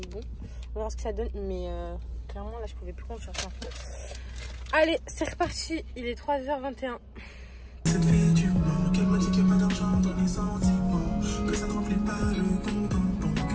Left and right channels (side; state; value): both; identical; correlation 1.00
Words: bon, on va voir ce que ça donne. Mais clairement là je pouvais plus conduire sans. Allez, c'est reparti, il est 3h21. Cette fille du manque, elle m'a dit qu'il n'y a pas d'argent dans les sentiments, que ça ne remplit pas le compte en banque,